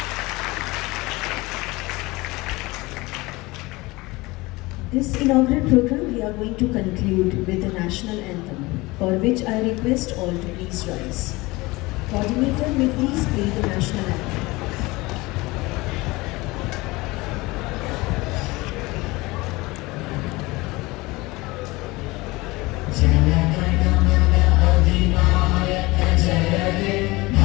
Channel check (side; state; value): right; quieter; 22.1 dB